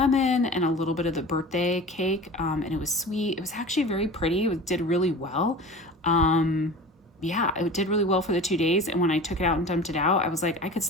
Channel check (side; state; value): both; normal; correlation 0.36